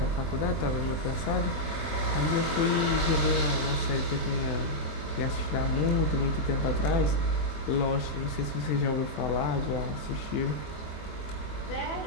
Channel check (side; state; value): right; late; 19 ms